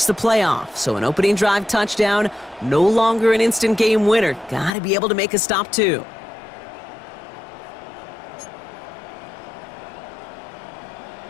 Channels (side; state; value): right; drops out; at 4.7 s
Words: the playoff. So an opening drive touchdown, no longer an instant game winner. Gotta be able to make a stop too.